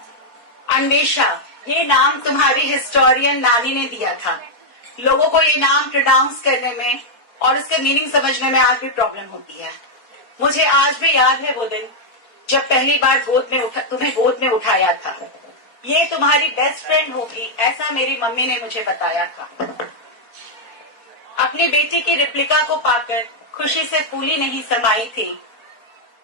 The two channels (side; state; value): right; late; 4.4 ms